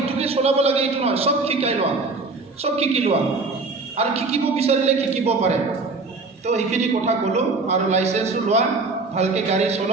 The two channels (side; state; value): left; quieter; 3.8 dB